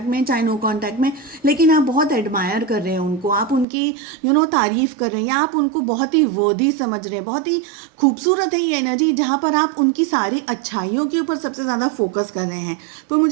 में चाहे नो कांटेक्ट में, लेकिन आप बहुत एडमायर कर रहे हैं उनको, आप उनकी तारीफ़ कर रहे हैं या आप उनको बहुत ही वर्दी समझ रहे हैं। बहुत ही खूबसूरत है ये एनर्जी जहाँ पर आप उनकी सारी अच्छाइयों के ऊपर सबसे ज़्यादा फोकस कर रहे हैं। तो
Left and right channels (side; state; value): left; drops out; at 3.7 s